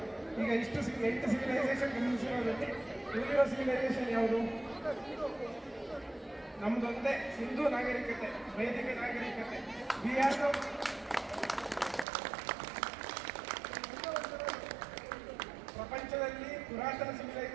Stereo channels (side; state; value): left; drops out; at 12.1 s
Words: ಈಗ ಇಷ್ಟು 8 ಸಿವಿಲೈಸೇಷನ್ ಗಮನಿಸಿರೋದ್ರಲ್ಲಿ ಉಳಿದಿರೋ ಸಿವಿಲೈಸೇಷನ್ ಯಾವುದು? ನಮ್ದೊಂದೇ ಸಿಂಧು ನಾಗರಿಕತೆ, ವೈದಿಕ ನಾಗರಿಕತೆ. ಪ್ರಪಂಚದಲ್ಲಿ ಪುರಾತನ